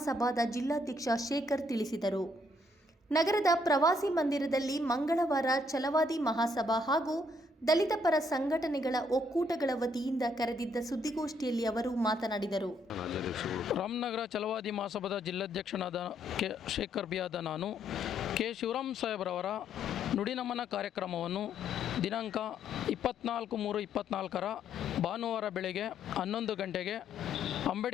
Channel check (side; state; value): both; normal; correlation 0.70